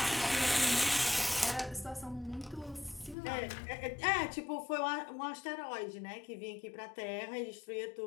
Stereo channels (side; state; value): right; drops out; at 3.2 s